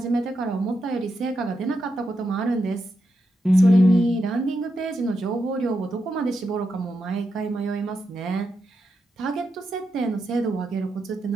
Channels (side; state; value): both; normal; correlation 0.85